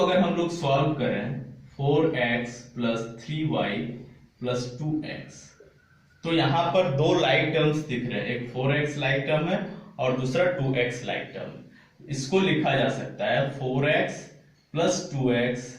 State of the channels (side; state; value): both; identical; correlation 1.00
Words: हम लोग सॉल्व करें 4x plus 3y plus 2x, तो यहां पर दो लाइक टर्म्स दिख रहे हैं, एक 4x लाइक टर्म है और दूसरा 2x लाइक टर्म। इसको लिखा जा सकता है 4x plus 2x